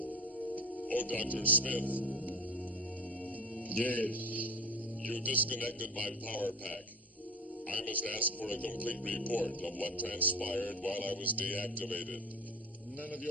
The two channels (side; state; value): both; normal; correlation 0.34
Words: Oh, Dr. Smith, Yes. you disconnected my power pack. I must ask for a complete report of what transpired while I was deactivated. None of